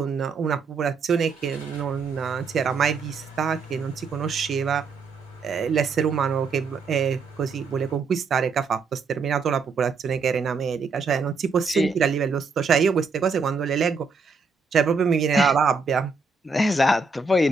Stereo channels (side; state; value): left; quieter; 4.6 dB